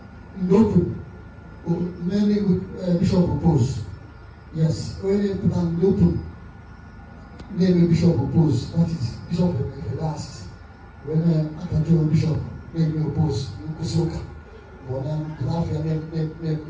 note many bishop propose. Yes, when you put an open name a bishop oppose, that is Bishop Vedas. When a bishop name oppose, Kusoka, or then Lafia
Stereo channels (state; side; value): identical; both; correlation 1.00